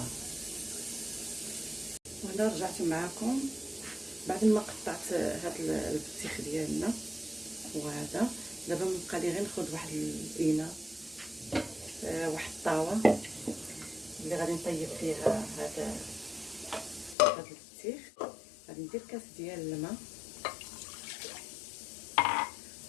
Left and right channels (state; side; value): drops out; right; at 17.2 s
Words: وهنا رجعت معكم بعد ما قطعت هذا البطيخ ديالنا. وهذا دابا مبقى لي غير ناخذ واحد الاناء، واحد الطاوه اللي غادي نطيب فيها هذا البطيخ. غادي ندير كاس ديال الماء